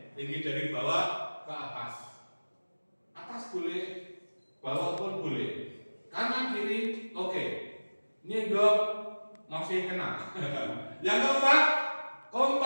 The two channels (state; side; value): inverted; both; correlation -1.00